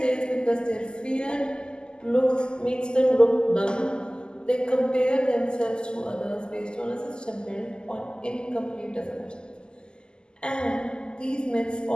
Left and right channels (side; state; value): right; late; 0.047 ms